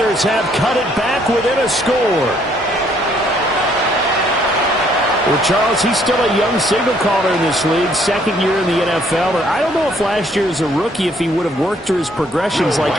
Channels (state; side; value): normal; both; correlation 0.65